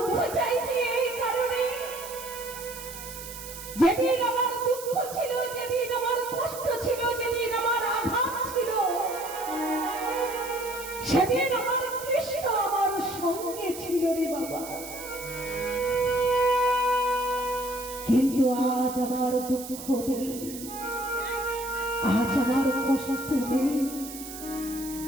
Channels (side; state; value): right; noise; hiss, 12 dB below the sound